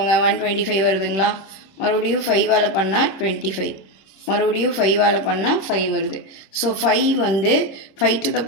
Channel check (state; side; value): late; right; 26 ms